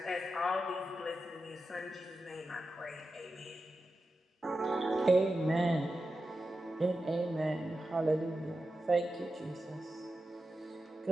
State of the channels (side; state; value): both; normal; correlation 0.91